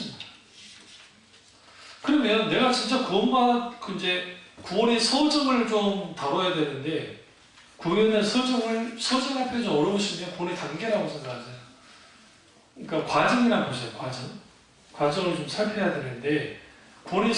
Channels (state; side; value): identical; both; correlation 1.00